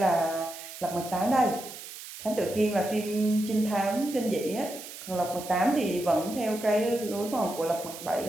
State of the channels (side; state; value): right; noise; hiss, 12 dB below the sound